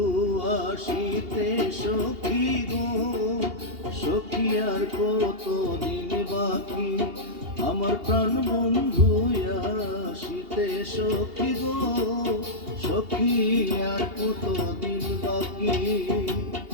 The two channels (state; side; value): late; left; 2.8 ms